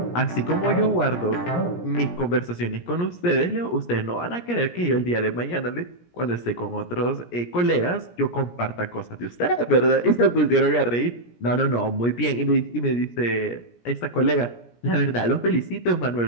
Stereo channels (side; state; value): right; late; 17 ms